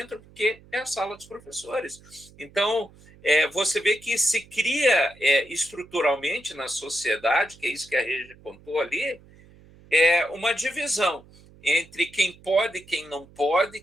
porque é a sala dos professores. Então, você vê que se cria estruturalmente na sociedade, que é isso que a Regi contou ali, uma divisão entre quem pode e quem não pode,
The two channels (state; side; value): noise; right; hum, 25 dB below the sound